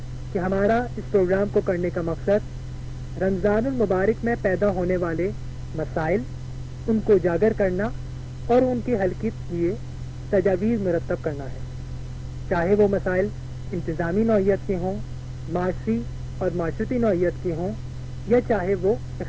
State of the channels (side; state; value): both; identical; correlation 1.00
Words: کہ ہمارا اس پروگرام کو کرنے کا مقصد رمضان المبارک میں پیدا ہونے والے مسائل، ان کو اجاگر کرنا اور ان کے حل کے لیے تجاویز مرتب کرنا ہے، چاہے وہ مسائل انتظامی نوعیت کے ہوں، معاشی اور معاشرتی نوعیت کے ہوں، یا چاہے وہ